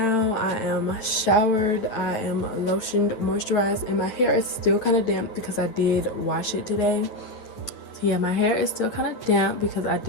I am showered, I am lotioned, moisturized, and my hair is still kind of damp because I did wash it today. So yeah, my hair is still kind of damp because I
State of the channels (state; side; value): late; right; 9.2 ms